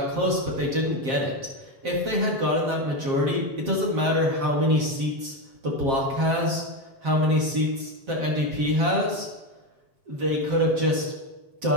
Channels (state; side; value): late; left; 7.5 ms